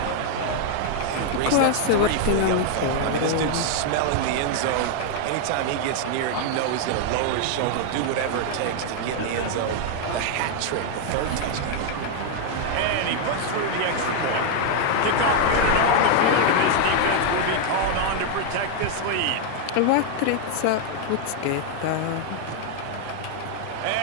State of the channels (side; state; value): both; different; correlation 0.00